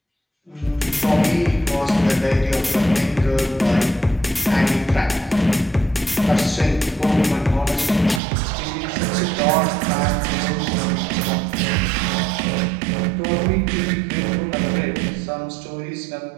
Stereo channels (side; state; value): left; drops out; at 8.2 s